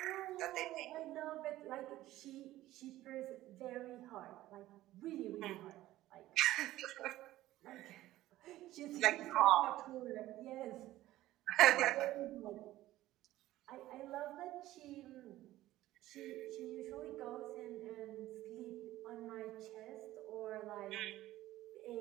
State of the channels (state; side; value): quieter; left; 15.5 dB